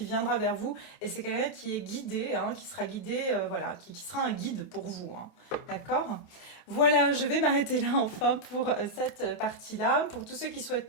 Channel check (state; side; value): late; right; 28 ms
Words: viendra vers vous et c'est quelqu'un qui est guidé, hein, qui sera guidé, voilà, qui sera un guide pour vous, hein. D'accord? Voilà, je vais m'arrêter là enfin pour cette partie-là. Pour tous ceux qui souhaitent